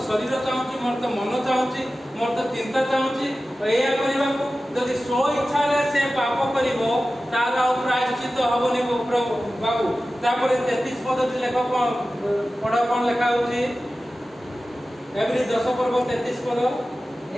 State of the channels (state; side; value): normal; both; correlation 0.95